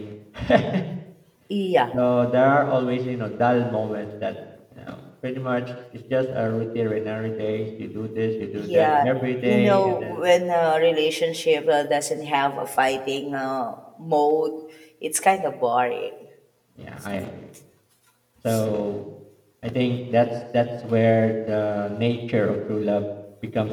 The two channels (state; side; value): identical; both; correlation 1.00